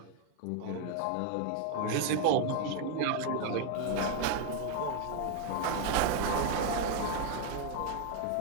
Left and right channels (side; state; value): both; different; correlation 0.00